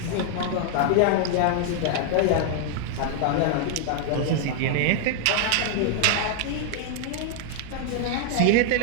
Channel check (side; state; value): both; different; correlation 0.00